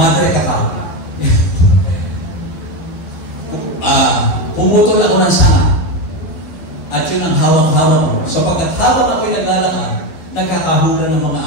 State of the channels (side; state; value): right; late; 12 ms